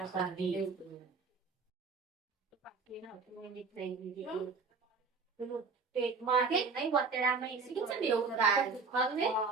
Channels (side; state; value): left; quieter; 4.6 dB